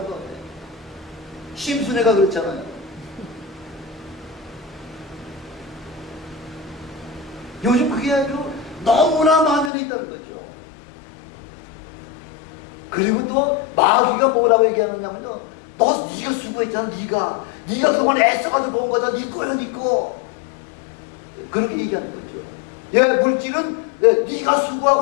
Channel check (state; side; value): drops out; right; at 9.7 s